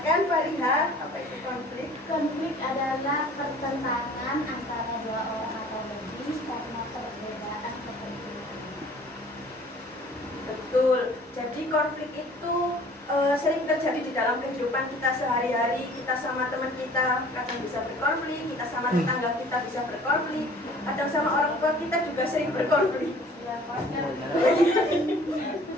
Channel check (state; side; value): normal; both; correlation 0.50